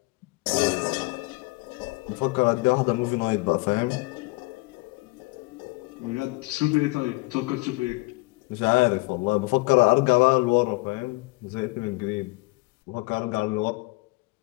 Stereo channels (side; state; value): right; quieter; 24.8 dB